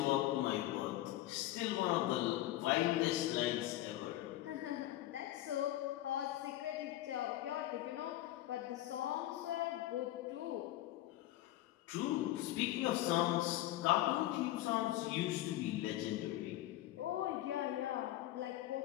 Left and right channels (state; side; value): quieter; right; 14.9 dB